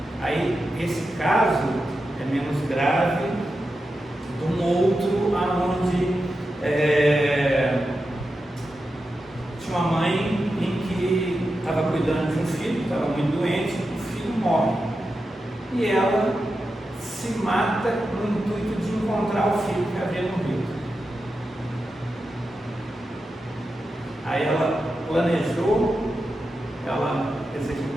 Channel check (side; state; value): both; normal; correlation 0.90